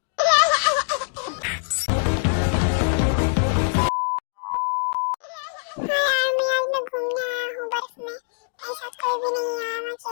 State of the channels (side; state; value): right; silent; digital silence